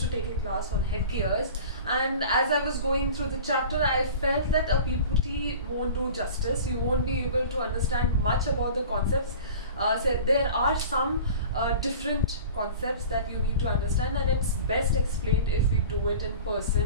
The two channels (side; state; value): both; inverted; correlation -0.40